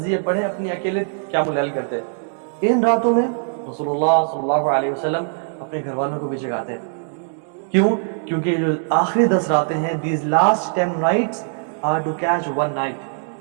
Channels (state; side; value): silent; left; digital silence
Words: پڑھیں، اپنی اکیلے قیام اللیل کرتے۔ ان راتوں میں رسول اللہ صلی اللہ علیہ وسلم اپنے گھر والوں کو بھی جگاتے۔ کیوں؟ کیونکہ یہ جو آخری 10 راتیں ہیں، these last 10 nights are to catch one night،